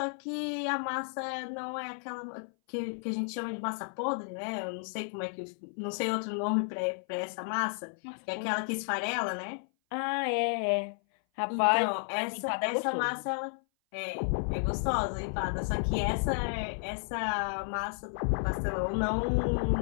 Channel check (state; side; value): silent; right; 56 dB below the other